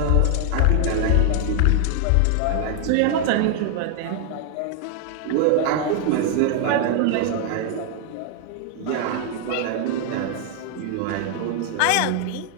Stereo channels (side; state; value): both; different; correlation 0.00